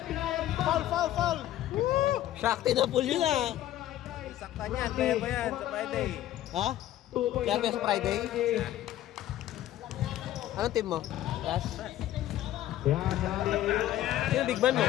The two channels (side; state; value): right; quieter; 13.3 dB